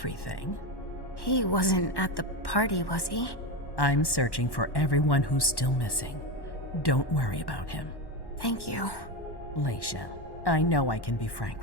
He wasn't at the party, was he? I'm searching for everyone who's still missing. Don't worry about him. Thank you. Leisha, I know I can be frank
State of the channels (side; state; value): right; late; 1.1 ms